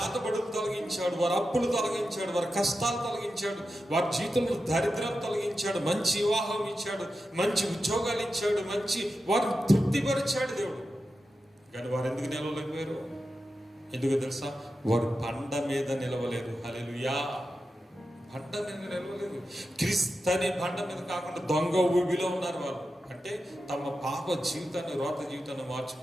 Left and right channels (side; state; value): both; normal; correlation 0.91